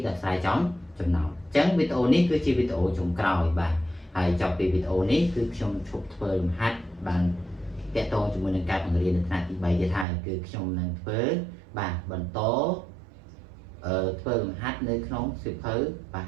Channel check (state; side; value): drops out; left; at 10.1 s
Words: ដោះស្រាយចំណោទអញ្ចឹងវីដេអូនេះគឺជាវីដេអូចុងក្រោយបាទហើយចប់ពីវីដេអូនេះគឺខ្ញុំឈប់ធ្វើលំហាត់បានតាក់ទងជាមួយនឹងការបង្រៀននៅថ្នាក់ទី3ទៀតហើយគឺខ្ញុំនឹងធ្វើបាទបន្តធ្វើលំហាត់នៅក្នុងសៀវភៅបាទ